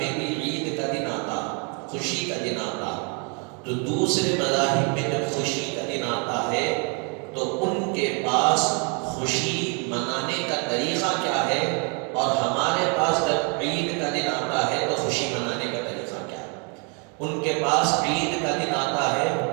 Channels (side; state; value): left; quieter; 35.8 dB